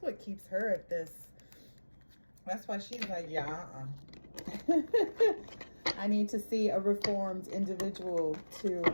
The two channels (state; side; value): inverted; both; correlation -1.00